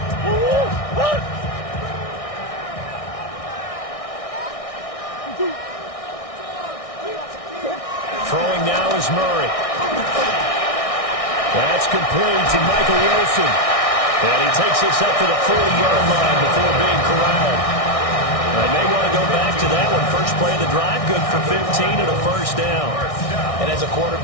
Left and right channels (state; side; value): late; right; 1.6 ms